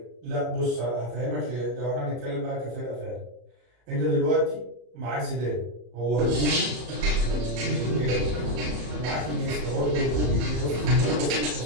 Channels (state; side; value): late; left; 34 ms